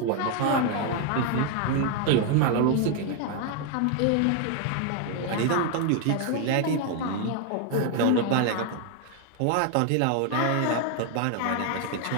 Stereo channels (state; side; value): different; both; correlation 0.01